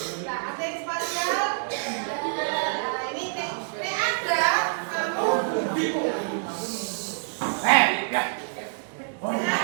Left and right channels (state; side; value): silent; left; digital silence